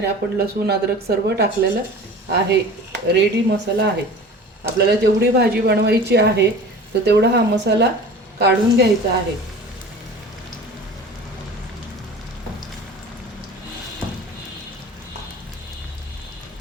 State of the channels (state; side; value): normal; both; correlation 0.39